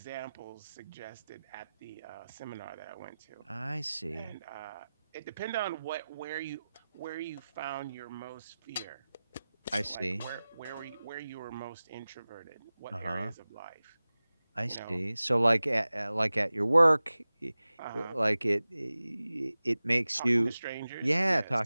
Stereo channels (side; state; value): both; inverted; correlation -0.96